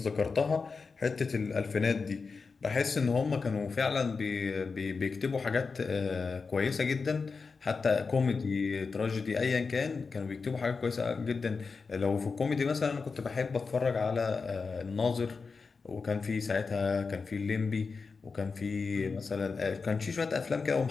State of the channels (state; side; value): quieter; right; 4.7 dB